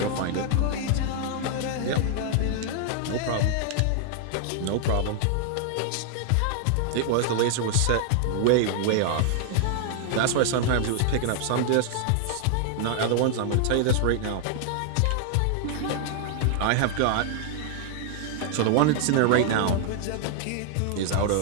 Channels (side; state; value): both; different; correlation 0.00